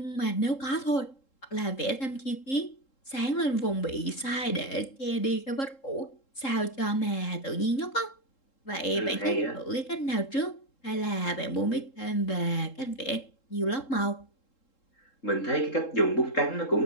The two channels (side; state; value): right; late; 3.7 ms